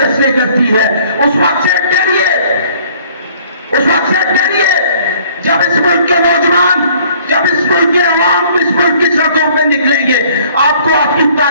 करती है। उस वक्त से डरिए, उस वक्त से डरिए जब इस मुल्क के नौजवान, जब इस मुल्क के आवाम इस मुल्क की सड़कों पे निकलेंगे, आपको आपकी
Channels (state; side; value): inverted; both; correlation -0.57